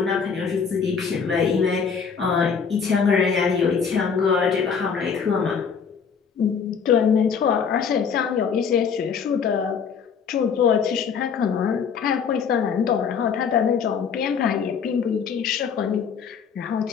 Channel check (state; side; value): quieter; right; 6.4 dB